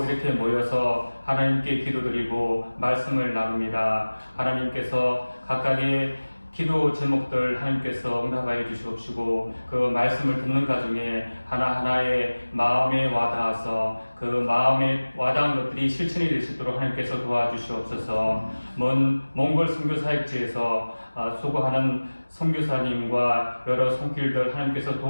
이렇게 모여서 하나님께 기도드리고 말씀을 나눕니다. 하나님께서 각각의 기도 제목들 하나님께서 응답하여 주시옵시고 그 말씀을 듣는 가중에 하나하나의 마음에 와닿아서 그 마음에 와닿은 것들이 실천이 될 수 있도록 하나님께서 도와주시옵소서. 먼 몽골 선교사역지에서 수고하는 선교사님과 여러 손길들 하나님께서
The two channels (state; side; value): inverted; both; correlation -1.00